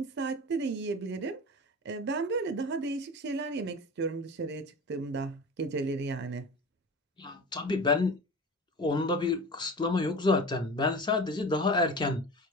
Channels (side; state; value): both; normal; correlation 0.34